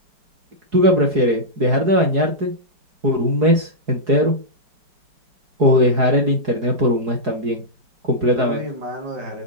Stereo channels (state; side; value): late; left; 4.7 ms